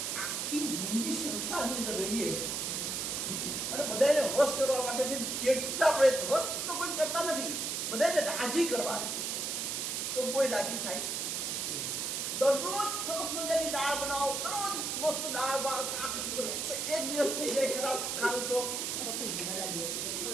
આખી જિંદગી સંસારની અંદર રહીએ અને બધાને વશ કરવા માટે કેટલા પ્રયત્ન, વશ તો કોઈ કરતા નથી, બધાને રાજી કરવા છે તો કોઈ રાજી થાય છે? દરરોજ સરસ મજાની દાળ બનાવો, દરરોજ મસ્ત દાળ ભાત શાક, એક દિવસ થઈ જાય ખરાબ ખાવું તો બધા દિવસ।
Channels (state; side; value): noise; right; hiss, 1 dB below the sound